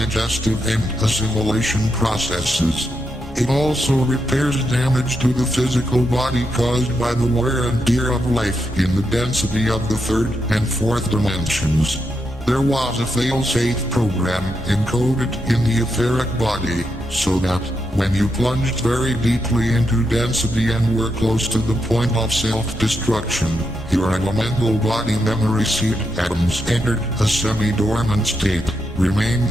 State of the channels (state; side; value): normal; both; correlation 0.83